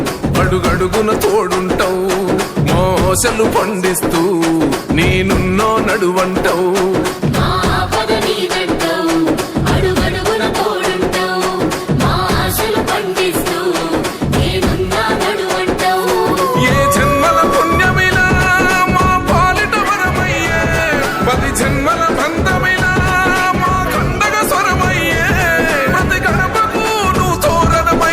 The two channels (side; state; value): both; identical; correlation 1.00